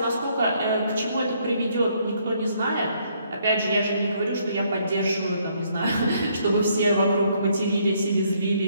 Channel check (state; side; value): inverted; both; correlation -0.69